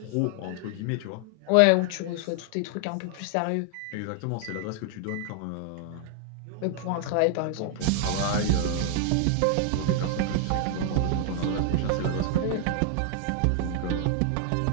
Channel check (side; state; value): both; different; correlation 0.00